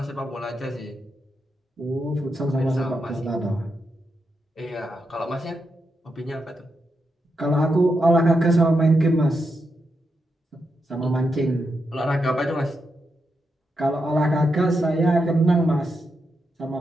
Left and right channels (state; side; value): normal; both; correlation 0.84